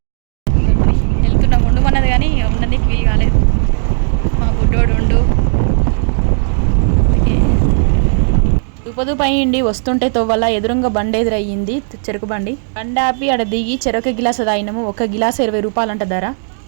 వెళ్తున్నాం ఉండమన్నది కానీ ఉండడానికి వీలు కాలేదు. మా బుడ్డోడు ఉండు దుపదుపు అయ్యిండి. వస్తుంటే తోవల్ల ఎదురుంగా బండి ఎదురయ్యింది, చెరుకు బండి. బండి ఆపి ఆడ దిగి చెరుకు గిలాస తాగినాము. ఒక గిలాస 20 రూపాయలు అంట ధర.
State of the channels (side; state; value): left; silent; digital silence